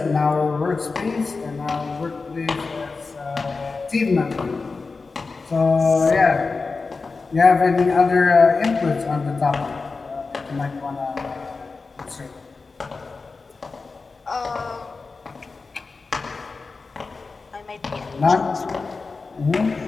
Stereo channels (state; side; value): quieter; right; 4.2 dB